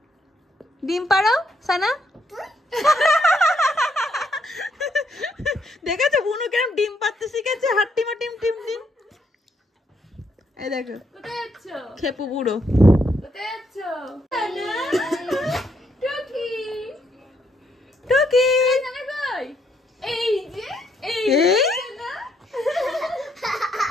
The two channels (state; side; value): normal; both; correlation 0.74